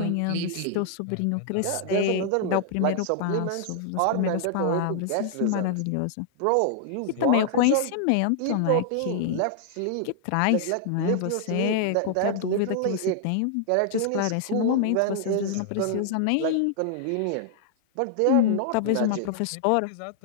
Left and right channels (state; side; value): different; both; correlation 0.00